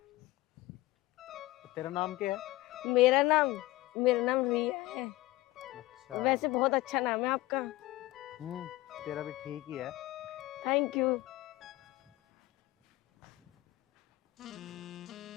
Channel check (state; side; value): quieter; right; 18.8 dB